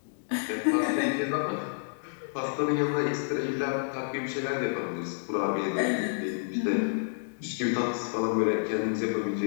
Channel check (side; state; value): right; silent; digital silence